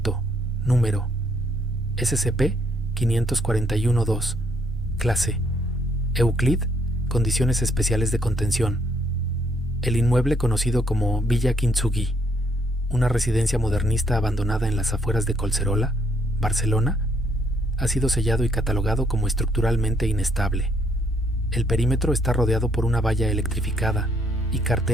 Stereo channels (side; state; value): both; normal; correlation 0.70